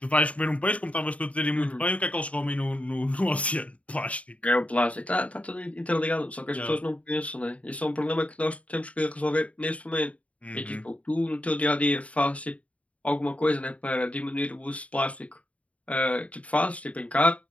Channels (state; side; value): late; right; 0.066 ms